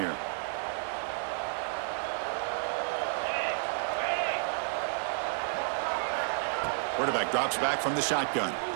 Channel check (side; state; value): left; silent; 57 dB below the other